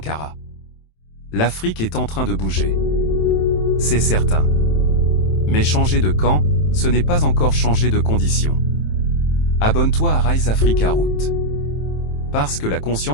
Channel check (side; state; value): right; late; 27 ms